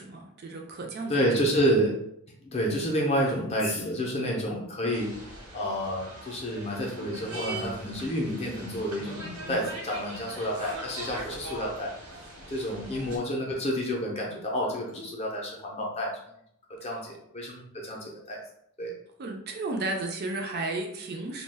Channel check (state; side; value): normal; both; correlation 0.27